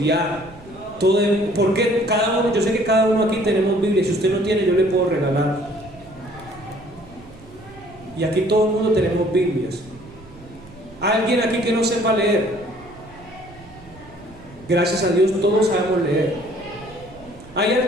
Porque cada uno, yo sé que cada uno aquí tenemos Biblia. Si usted no tiene, yo le puedo regalar. Y aquí todo el mundo tenemos Biblias. ¿Hay alguien aquí que no sepa leer? Gracias a Dios todos sabemos leer. ¿Hay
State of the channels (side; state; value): right; noise; rumble, 22 dB below the sound